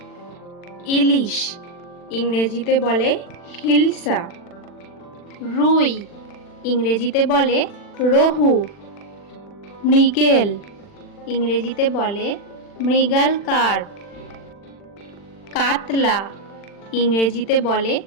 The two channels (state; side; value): late; right; 40 ms